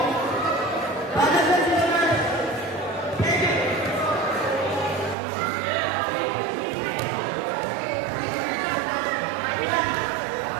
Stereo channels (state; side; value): drops out; left; at 5.2 s